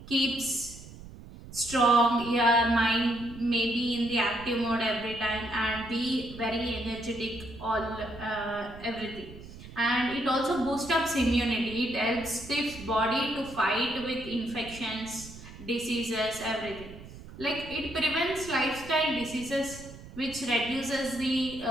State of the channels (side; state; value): right; noise; rumble, 16 dB below the sound